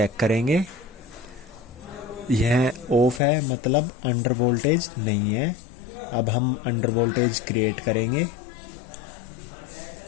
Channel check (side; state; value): right; drops out; at 3.2 s